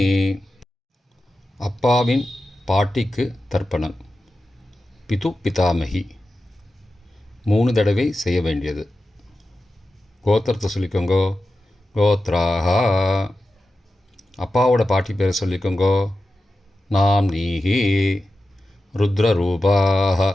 அப்பாவின் பாட்டிக்கு தர்ப்பணம். பிது பிதாமகி 3 தடவை செய்ய வேண்டியது. கோத்திரத்தை சொல்லிக்கோங்கோ கோத்ராக. அப்பாவோட பாட்டி பேரை சொல்லிக்கோங்கோ நாம் நீஹி. ருத்ரரூபாக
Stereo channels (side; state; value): both; normal; correlation 0.92